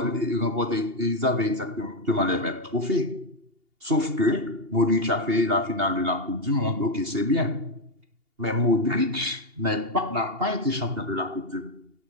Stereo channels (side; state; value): left; late; 2.8 ms